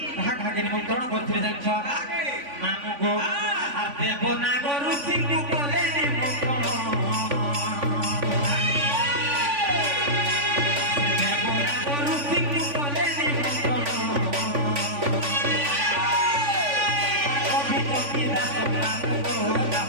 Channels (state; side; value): late; left; 3.5 ms